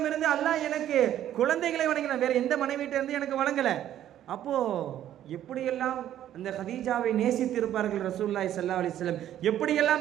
இருந்து அல்லாஹ் எனக்கு குழந்தைகளை வழங்கினான், வேற எந்த மனைவியிட்ட இருந்து எனக்கு வழங்கல. அப்போ எப்படியெல்லாம் அந்த ஹதீஜாவை நேசித்திருப்பார்கள் ரசூலுல்லாஹி ஸல்லல்லாஹு அலைஹி வஸல்லம்,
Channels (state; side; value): quieter; left; 11.6 dB